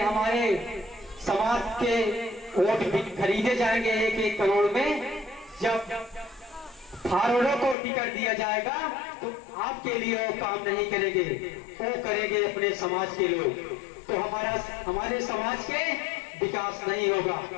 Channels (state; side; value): drops out; right; at 7.8 s